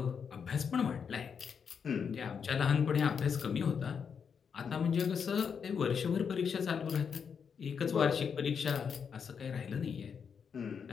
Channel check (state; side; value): quieter; right; 6.7 dB